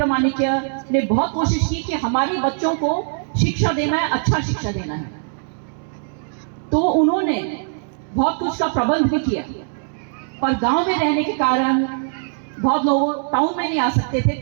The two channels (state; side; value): silent; left; 65 dB below the other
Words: माणिक्य ने बहुत कोशिश की कि हमारे बच्चों को शिक्षा देना है, अच्छा शिक्षा देना है। तो उन्होंने बहुत कुछ का प्रबंध भी किया, पर गांव में रहने के कारण बहुत लोग टाउन में नहीं आ सकते थे,